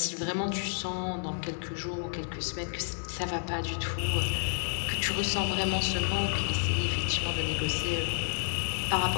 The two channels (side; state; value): right; silent; digital silence